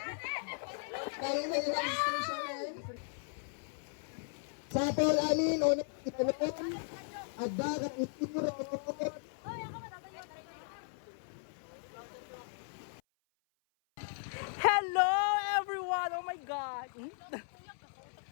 Kaya na yung registration eh. Sa Paul Amin, o nagkitanong, ada ka ituro. Hello everyone! Oh my God!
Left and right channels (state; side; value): silent; right; 53 dB below the other